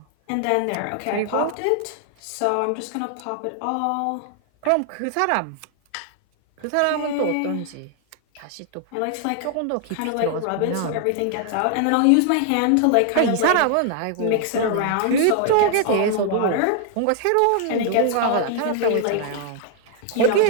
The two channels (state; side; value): different; both; correlation 0.00